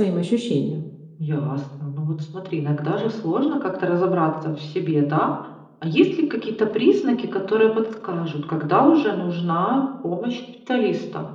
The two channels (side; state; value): both; identical; correlation 1.00